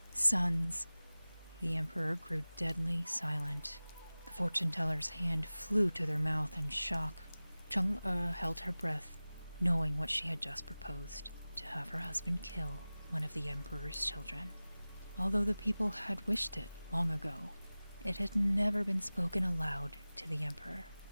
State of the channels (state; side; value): inverted; both; correlation -0.98